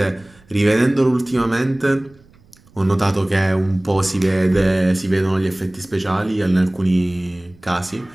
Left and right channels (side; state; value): right; noise; rumble, 28 dB below the sound